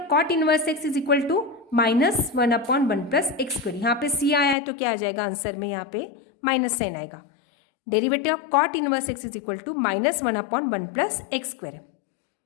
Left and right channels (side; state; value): right; drops out; at 4.5 s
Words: cot inverse x is equal to -1/1 plus x square. यहाँ पे सी आया है तो क्या आ जाएगा answer में, यहाँ पे माइनस साइन आएगा। Derivative of cot inverse x is equal to -1/1 plus x square.